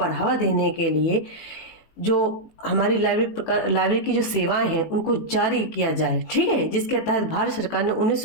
देने के लिए जो हमारी लाइब्रेरी की जो सेवाएं हैं उनको जारी किया जाए। ठीक है, जिसके तहत भारत सरकार ने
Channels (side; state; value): right; late; 18 ms